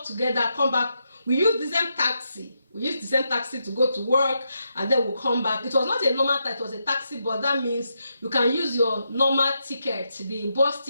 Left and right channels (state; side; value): inverted; both; correlation -0.83